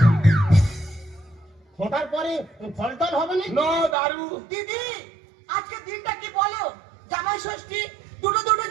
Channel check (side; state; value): left; drops out; at 4.0 s